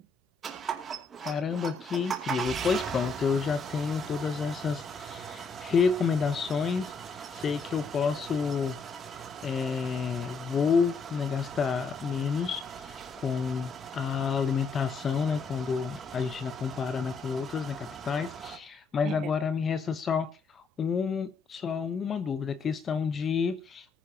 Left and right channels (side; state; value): right; quieter; 4.6 dB